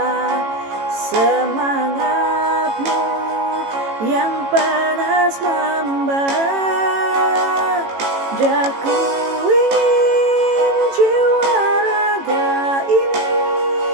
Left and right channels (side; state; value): left; late; 18 ms